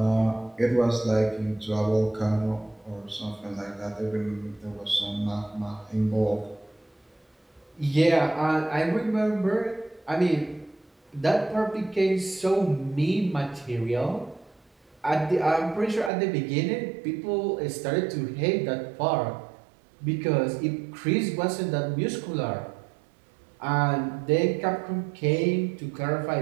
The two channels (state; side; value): drops out; left; at 16.1 s